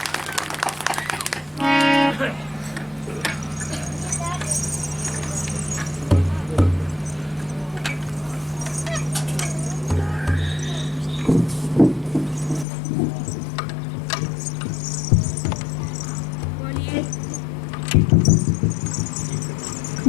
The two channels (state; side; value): drops out; right; at 12.7 s